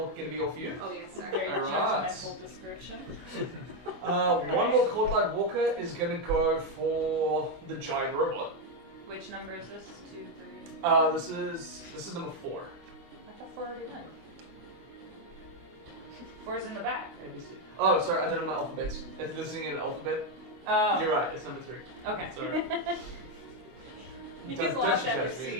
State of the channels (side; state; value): left; late; 23 ms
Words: going to be all for you? Oh yes, sir. Very Alright. judgmental description. One more Cold Light Walker is going to go for the giant robot. Which number is this? 2, 3. This is number 4. thought 4 already went. 4's in the back. ABC. Oh, sorry, I don't know my alphabets. It's listening in an alphabet. Oh. You're right, it's number 3. Okay. Sorry. You Don't just lost judge after